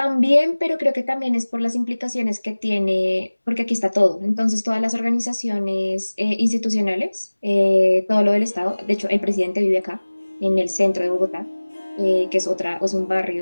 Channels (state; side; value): inverted; both; correlation -1.00